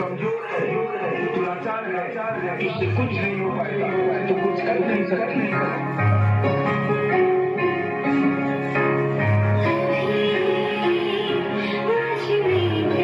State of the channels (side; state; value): both; identical; correlation 1.00